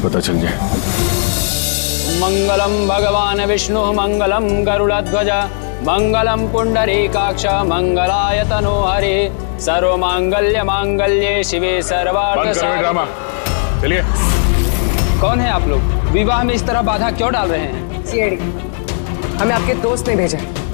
चल जाए। मंगलम भगवान विष्णु मंगलम गरुड़ध्वज मंगलम पुंडरीकाक्ष मंगलाय तनो हरे सर्व मांगल्य मांगल्ये शिवे सर्वार्थ ड्रामा। चलिए। कौन है आप लोग? विवाह में इस तरह बाधा क्यों डाल रहे हैं? सीआईडी, हमें आपके दोस्त ने भेजा है,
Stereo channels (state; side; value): silent; right; digital silence